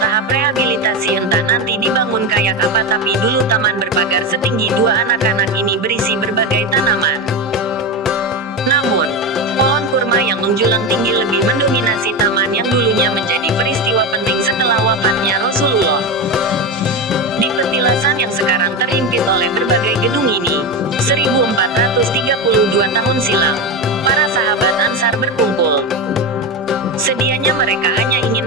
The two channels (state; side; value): normal; both; correlation 0.17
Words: tahap rehabilitasi, entah nanti dibangun kayak apa, tapi dulu taman berpagar setinggi 2 anak-anak ini berisi berbagai tanaman. Namun, pohon kurma yang menjulang tinggi lebih mendominasi taman yang dulunya menjadi peristiwa penting setelah wafatnya Rasulullah. Di petilasan yang sekarang terhimpit oleh berbagai gedung ini, 1432 tahun silam, para sahabat Ansar berkumpul. Sedianya mereka hanya ingin